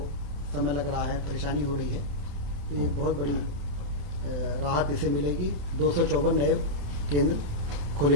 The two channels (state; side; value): late; left; 28 ms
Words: समय लग रहा है, परेशानी हो रही है। तो एक बहुत बड़ी राहत इसे मिलेगी। 254 नए केंद्र खोले